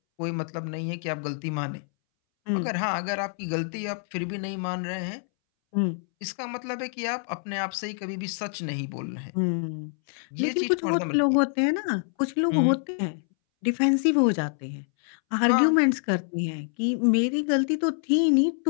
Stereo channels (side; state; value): right; silent; 60 dB below the other